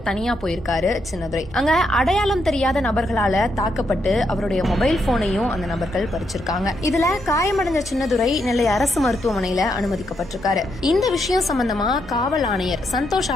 தனியா போயிருக்காரு சின்னதுரை. அங்க அடையாளம் தெரியாத நபர்களால தாக்கப்பட்டு அவருடைய மொபைல் போனையும் அந்த நபர்கள் பறிச்சிருக்காங்க. இதுல காயமடைஞ்ச சின்னதுரை நெல்லை அரசு மருத்துவமனையில அனுமதிக்கப்பட்டிருக்காரு. இந்த விஷயம் சம்பந்தமா காவல் ஆணையர் சந்தோஷ்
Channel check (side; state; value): both; normal; correlation 0.79